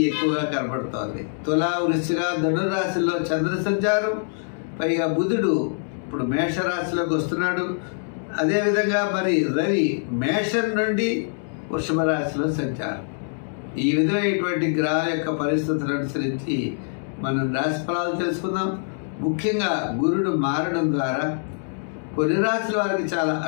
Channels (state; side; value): silent; right; digital silence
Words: ఎక్కువగా కనబడుతోంది. తులా, వృశ్చిక, ధనురాశిలో చంద్ర సంచారం, పైగా బుధుడు ఇప్పుడు మేషరాశిలోకి వస్తున్నాడు. అదేవిధంగా మరి రవి మేషం నుండి వృషభ రాశిలో సంచారం. ఈ విధమైనటువంటి గ్రహాల యొక్క పరిస్థితులను అనుసరించి మనం రాశి ఫలాలు తెలుసుకుందాం. ముఖ్యంగా గురుడు మారడం ద్వారా కొన్ని రాశుల వారికి చాలా